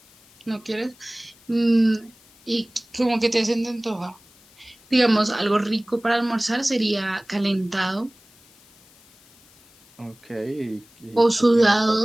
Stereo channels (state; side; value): noise; left; hiss, 28 dB below the sound